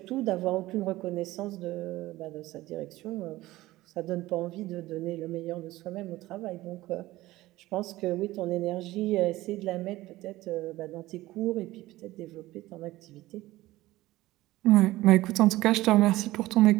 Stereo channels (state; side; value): quieter; left; 17.4 dB